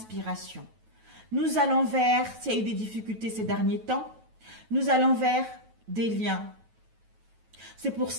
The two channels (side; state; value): left; late; 9.2 ms